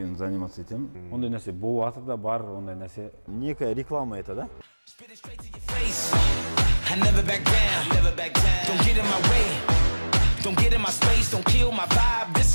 заниматься етем. Ондай нәрсе бұл атыда бар, ондай нәрсе. Некая реклама это, да? I never back down, never back down. Don't get in my way, don't get in my space, don't kill my vibe, this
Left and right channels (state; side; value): inverted; both; correlation -1.00